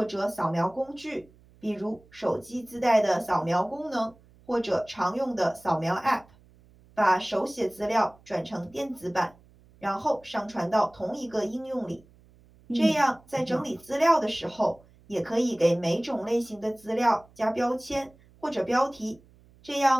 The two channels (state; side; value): noise; right; hum, 28 dB below the sound